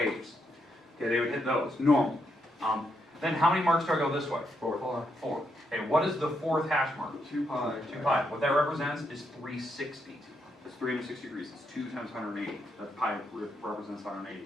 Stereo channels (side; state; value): both; normal; correlation 0.79